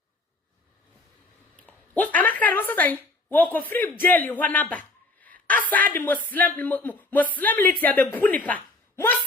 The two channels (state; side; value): quieter; right; 3.0 dB